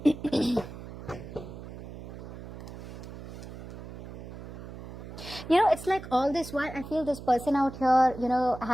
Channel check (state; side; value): noise; right; hum, 12 dB below the sound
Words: It's like all this while I feel this person out here,